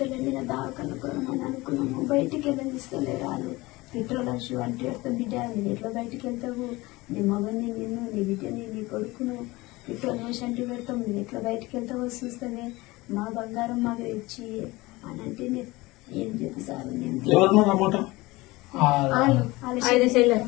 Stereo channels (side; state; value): right; quieter; 21.1 dB